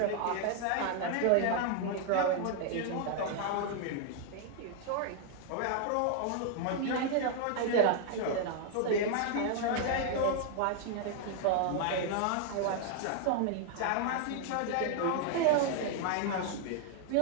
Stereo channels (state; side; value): different; both; correlation 0.00